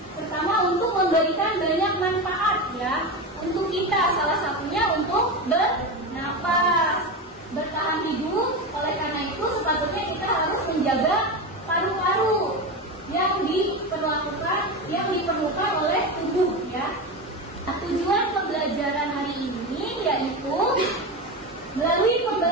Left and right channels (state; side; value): normal; both; correlation 0.20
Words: Pertama, untuk memberikan banyak manfaat ya untuk kita, salah satunya untuk bernapas, bertahan hidup. Oleh karena itu sepatutnya kita harus menjaga paru-paru yang diperlukan oleh tubuh ya. Nah, tujuan pembelajaran hari ini yaitu